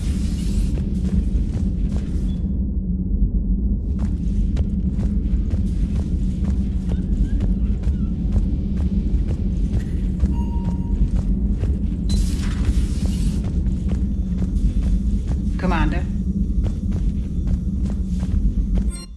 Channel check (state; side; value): identical; both; correlation 1.00